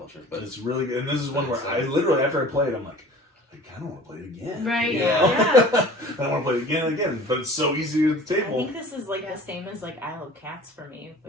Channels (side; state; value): both; normal; correlation 0.44